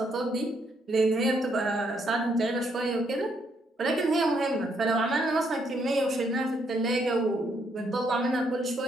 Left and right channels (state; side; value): normal; both; correlation 0.73